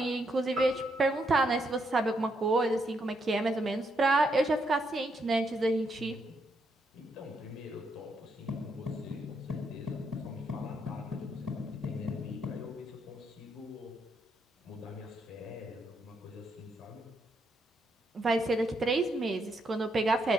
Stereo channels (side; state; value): both; normal; correlation 0.77